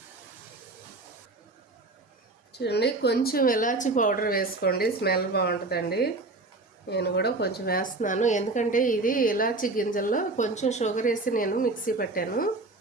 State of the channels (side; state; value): left; quieter; 3.2 dB